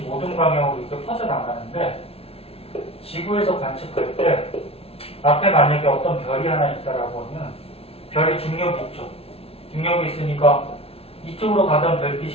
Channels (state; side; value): late; right; 0.28 ms